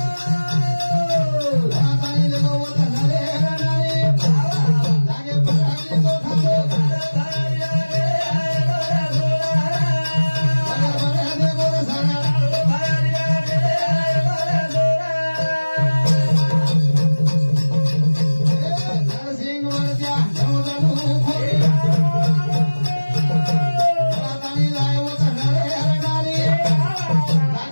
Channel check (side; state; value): both; inverted; correlation -1.00